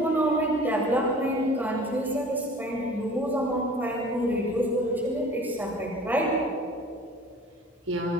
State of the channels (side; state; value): both; normal; correlation 0.45